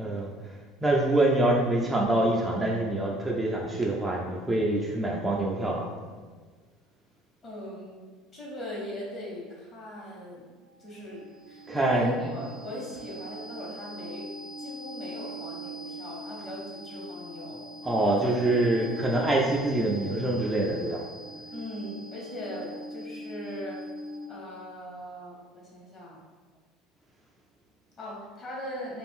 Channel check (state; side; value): normal; both; correlation 0.60